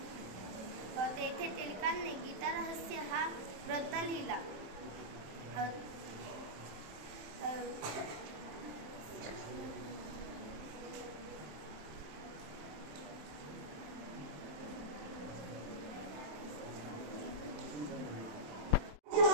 तेथे टिळकांनी गीतारहस्य हा ग्रंथ लिहिला.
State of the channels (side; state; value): left; late; 27 ms